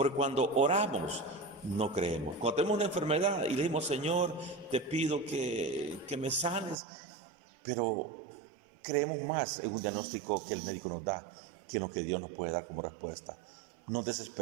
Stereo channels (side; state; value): left; drops out; at 6.8 s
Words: cuando oramos no creemos. Cuando tenemos una enfermedad y le decimos, Señor, te pido que me sanes, pero creemos más en un diagnóstico que el médico nos da que en lo que Dios nos puede dar como respuesta. Nos